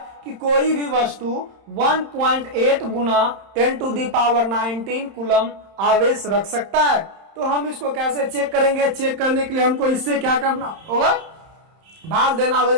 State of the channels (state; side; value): late; left; 31 ms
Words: कि कोई भी वस्तु 1.8 गुना 10⁻19 कूलम आवेश रख सकता है। तो हम इसको कैसे चेक करेंगे? चेक करने के लिए हमको इससे क्या करना होगा? भाग देना